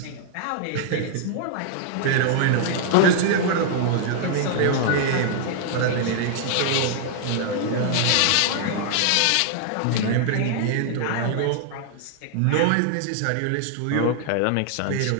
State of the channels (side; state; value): both; different; correlation 0.00